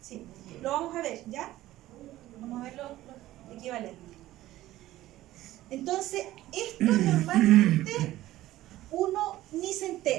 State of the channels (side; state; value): left; quieter; 15.4 dB